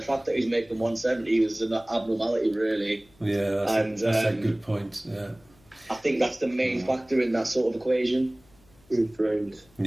fact that he's making 170 was an abnormality, really. Yeah, that's a good point. Yeah, I think that's the main factor in that sort of equation. He's drained.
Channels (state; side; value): noise; left; hum, 30 dB below the sound